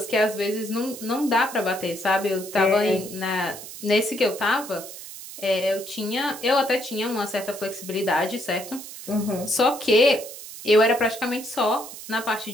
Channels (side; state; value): right; noise; hiss, 13 dB below the sound